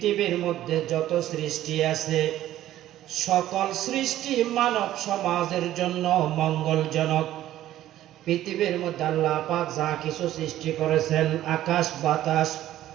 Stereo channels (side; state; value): left; quieter; 13.4 dB